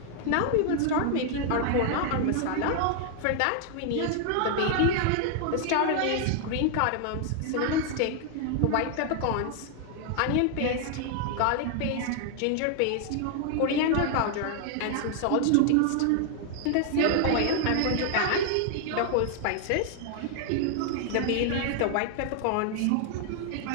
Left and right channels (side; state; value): both; different; correlation 0.00